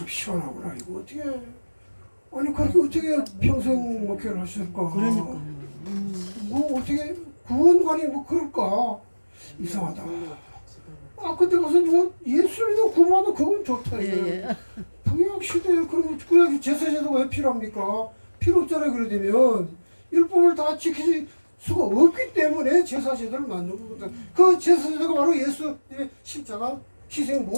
시원하구나. 이거 어떻게 아니 그렇게 어떻게 평생 목회를 하실까? 그러니까요. 뭐 어떻게 구원관이 뭐 그럴까? 이상하다. 그때 가서 뭐 예수님도 구원하도 그건 좋다. 예, 예. 구약 시대에 그럼 구약 제사제도가 왜 필요합니까? 필요 없잖아요. 그래 되면 율법을 다 지키지 수가 없기 때문에 제사제도를 만든 거거든. 그 제사제도가 바로 예수님의 십자가 희생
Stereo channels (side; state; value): both; inverted; correlation -1.00